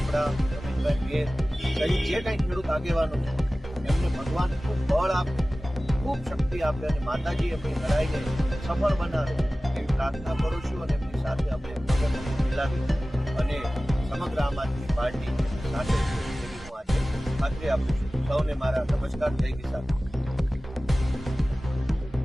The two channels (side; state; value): both; normal; correlation 0.97